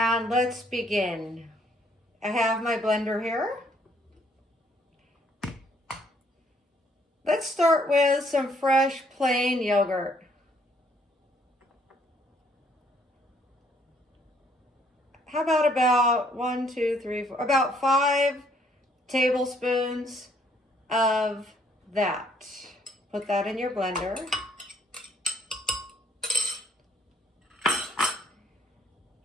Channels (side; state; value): both; normal; correlation 0.66